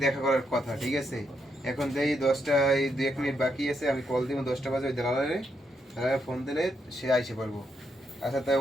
দেখা করার কথা ঠিক আছে এখন দেই 10টা এই 2 মিনিট বাকি আছে আমি কল দিব 10টা বাজে ওই দালালে ফোন দিলে সে আইসে পারবো আচ্ছা তাই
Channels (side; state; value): both; normal; correlation 0.79